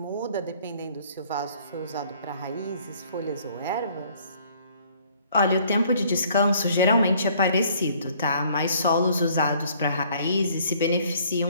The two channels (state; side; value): inverted; both; correlation -0.59